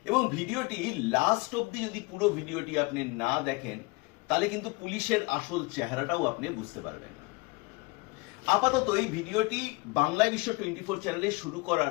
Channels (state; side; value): quieter; right; 26.2 dB